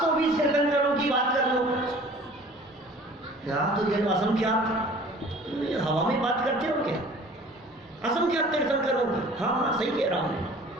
तीर्थंकरों की बात कर लो। तो ये असंख्यात हवा में बात करते हो क्या? असंख्यात तीर्थंकरों की, हाँ सही कह रहा हूँ,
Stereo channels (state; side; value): normal; both; correlation 0.48